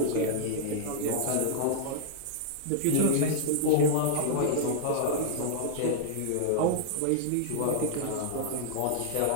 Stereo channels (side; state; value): both; different; correlation -0.01